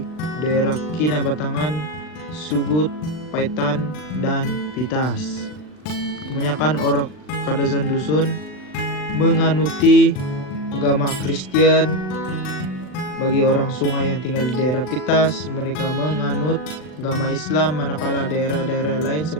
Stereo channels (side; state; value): right; late; 39 ms